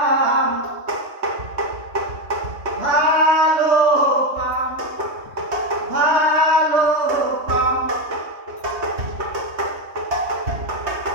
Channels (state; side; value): late; left; 3.2 ms